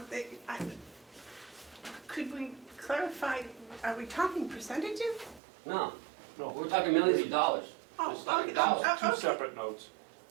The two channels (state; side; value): drops out; left; at 5.4 s